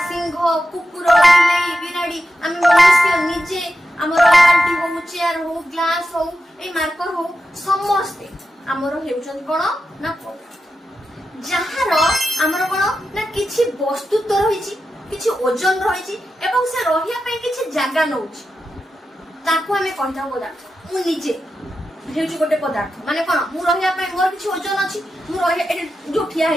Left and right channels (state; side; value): normal; both; correlation 0.90